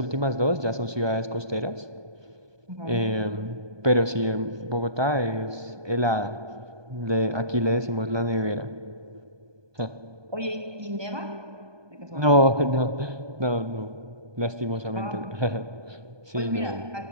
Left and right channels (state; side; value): late; left; 1.2 ms